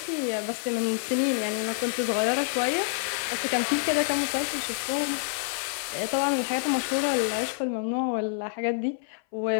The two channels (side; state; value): right; silent; 57 dB below the other